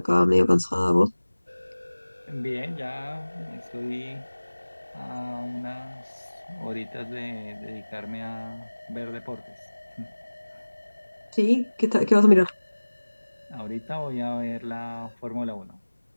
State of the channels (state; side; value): inverted; both; correlation -1.00